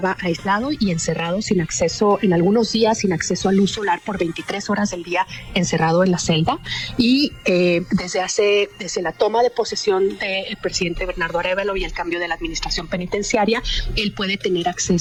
aislado y encerrado sin acceso, en algunos días sin acceso a luz solar por 23 horas del día, encerrado en la celda, y desde la toma de posesión del presidente Bernardo Arévalo y el cambio de la administración penitenciaria, él puede tener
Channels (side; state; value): both; identical; correlation 1.00